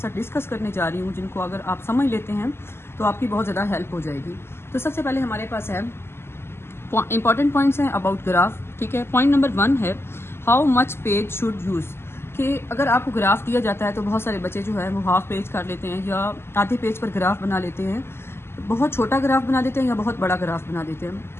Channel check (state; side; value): late; right; 0.12 ms